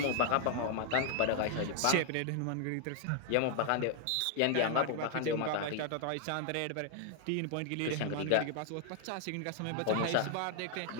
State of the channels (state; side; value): different; both; correlation 0.00